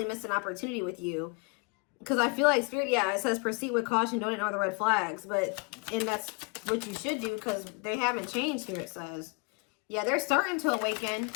missed an opportunity with you. Because I feel like Spirit, yeah, it says proceed with caution, don't ignore the red flags. And that's what you should do, because they haven't changed here, it says. Yeah, they're starting to awaken.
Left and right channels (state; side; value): quieter; right; 32.3 dB